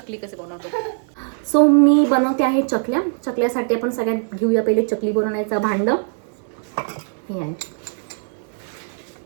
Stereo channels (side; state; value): left; silent; digital silence